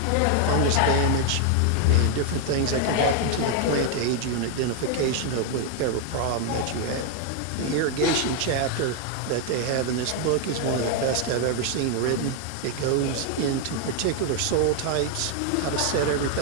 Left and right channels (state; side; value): different; both; correlation 0.00